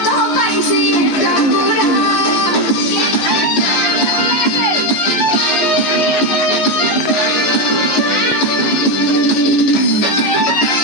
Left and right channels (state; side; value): late; right; 14 ms